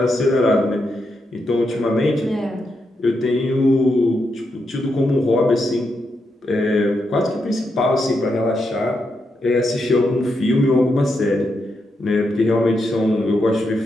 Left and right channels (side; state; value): both; normal; correlation 0.83